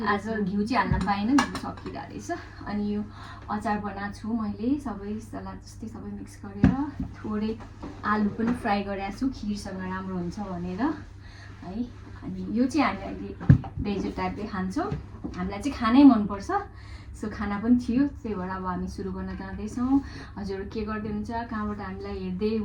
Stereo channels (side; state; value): both; identical; correlation 1.00